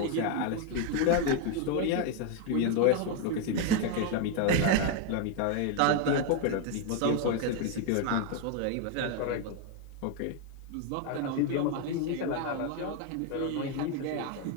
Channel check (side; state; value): both; different; correlation 0.01